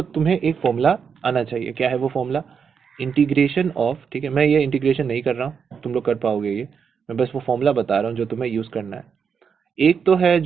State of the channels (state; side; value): quieter; left; 6.5 dB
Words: तुम्हें एक फॉर्मूला आना चाहिए। क्या है वो फॉर्मूला, इंटीग्रेशन ऑफ, ठीक है। मैं ये इंटीग्रेशन नहीं कर रहा हूँ, तुम लोग कर पाओगे ये, मैं बस वो फॉर्मूला बता रहा हूँ जो तुम्हें यूज़ करना है। एक तो है